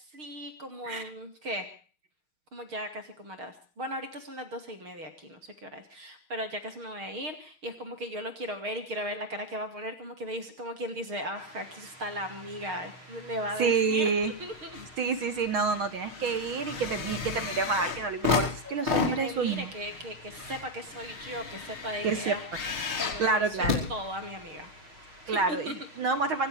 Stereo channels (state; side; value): late; left; 6.5 ms